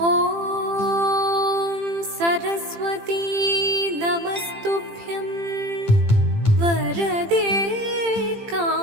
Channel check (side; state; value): left; late; 18 ms